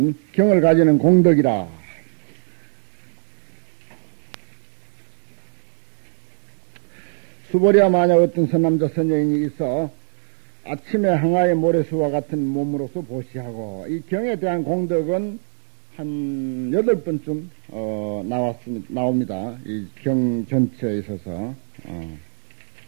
경을 가지는 공덕이라. 수보리야 만약 어떤 선남자 선여인이 있어 아침에 항아의 모래수와 같은 몸으로서 보시하고, 이 경에 대한 공덕은 한 8번쯤 나옵니다. 이 경 전체에 있어서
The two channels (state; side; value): silent; left; digital silence